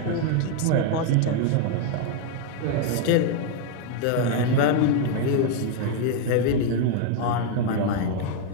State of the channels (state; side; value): different; both; correlation 0.01